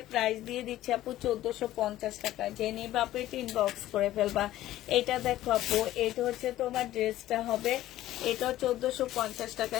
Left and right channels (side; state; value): right; quieter; 14.4 dB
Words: প্রাইস দিয়ে দিচ্ছি আপু 1450 টাকা, যে নিবা আপু এটা ইনবক্স করে ফেলবা। এটা দেখো আপু এটা হচ্ছে তোমার ড্রেসটা হবে, এটাও 1450 টাকা